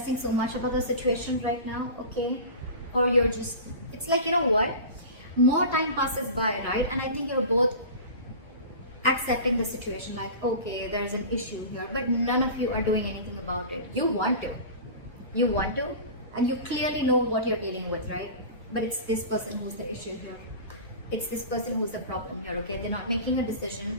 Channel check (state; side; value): inverted; both; correlation -0.34